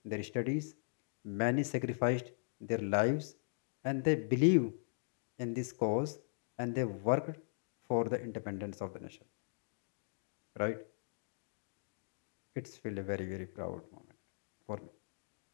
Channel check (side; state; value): right; silent; digital silence